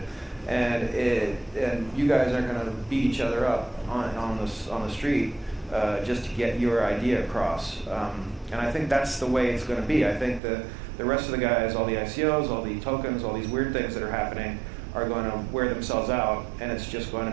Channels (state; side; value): drops out; left; at 10.4 s